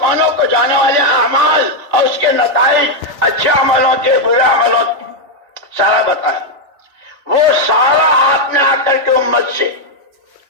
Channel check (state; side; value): late; left; 3.5 ms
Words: کو جانے والے اعمال اور اس کے نتائج اچھے عملوں کے برے عملوں کے سارا بتایا. وہ سارا آپ نے آ کر کے امت سے